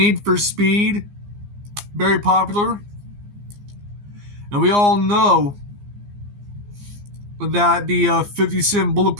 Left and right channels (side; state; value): left; late; 15 ms